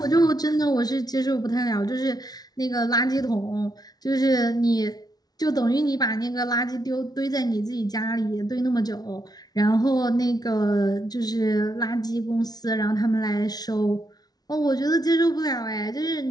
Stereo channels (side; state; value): right; late; 0.19 ms